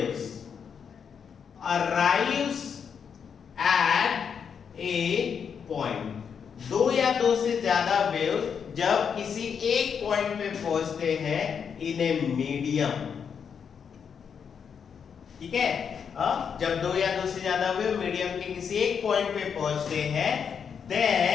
arrives at a point, दो या दो से ज्यादा वेव्स जब किसी एक पॉइंट पे पहुंचते हैं इन ए मीडियम, ठीक है, जब दो या दो से ज्यादा वेव मीडियम के किसी एक पॉइंट पे पहुंचते हैं,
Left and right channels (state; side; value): quieter; right; 7.0 dB